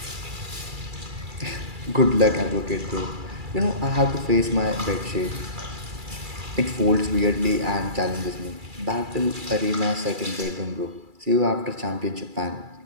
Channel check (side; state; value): left; late; 2.3 ms